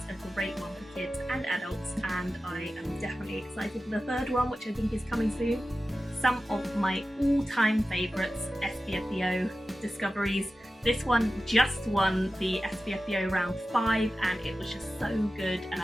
a great one for kids and adults, and I am definitely excited for the third one, which I think is coming soon. Some of my all-time favourites, SPFBO discoveries. This one just won the SPFBO round 5, and it was just so good, and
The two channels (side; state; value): both; normal; correlation 0.94